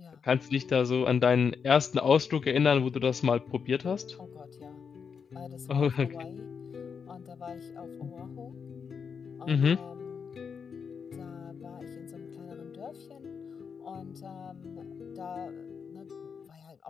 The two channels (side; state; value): right; quieter; 6.3 dB